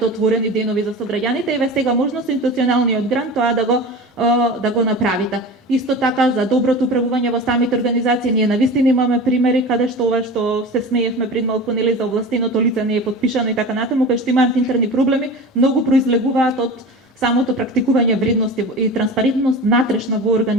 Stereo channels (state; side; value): normal; both; correlation 0.32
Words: отворени денови за сограѓаните, еве сега можно со институционалниот грант тоа да го направите. Исто така за доброто управување во самите организации, ние навистина имаме примери каде што ова што се смеевме пред малку нели за овластеното лице не е потпишано и така натаму, кај што имаат интерни проблеми, многу произлегуваат од самото практикување вредности и транспарентност натрешна во